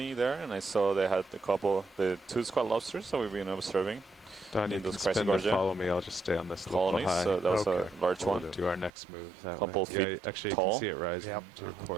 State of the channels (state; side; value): drops out; left; at 8.9 s